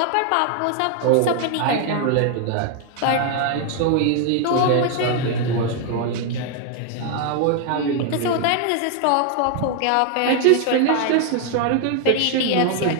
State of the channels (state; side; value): different; both; correlation 0.00